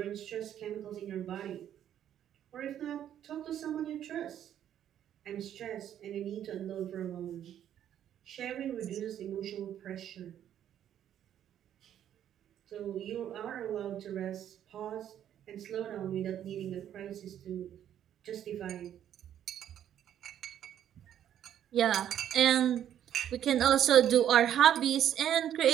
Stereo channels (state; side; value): quieter; left; 10.4 dB